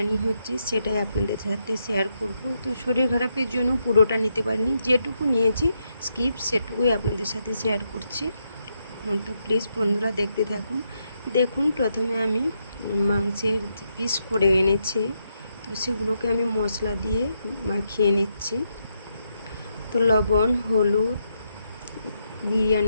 হচ্ছে সেটাই আপনাদের সাথে শেয়ার করব। তো শরীর খারাপের জন্য পুরোটা নিতে পারিনি, যেটুকু নিয়েছি স্কিপ সেটুকুই আপনাদের সাথে শেয়ার করছি। তো প্লিজ বন্ধুরা দেখতে থাকুন। দেখুন, প্রথমে আমি মাংসের পিস করে এনেছি, তো সেগুলোকে আমি মশলা দিয়ে মাখিয়ে নিচ্ছি। তো লবণ, হলুদ,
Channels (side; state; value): both; inverted; correlation -0.81